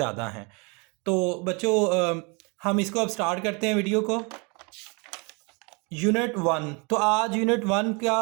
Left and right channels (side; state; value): left; quieter; 31.2 dB